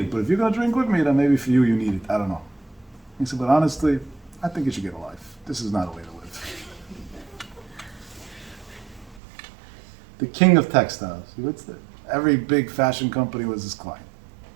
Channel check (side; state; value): left; drops out; at 9.2 s